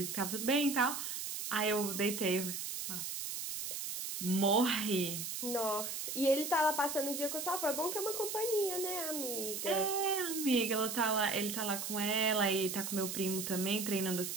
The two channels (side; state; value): right; noise; hiss, 4 dB below the sound